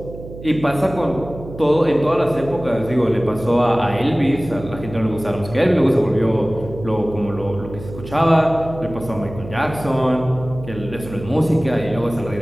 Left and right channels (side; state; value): right; noise; hum, 13 dB below the sound